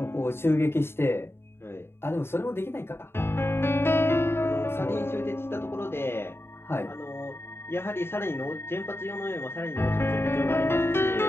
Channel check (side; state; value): right; late; 0.11 ms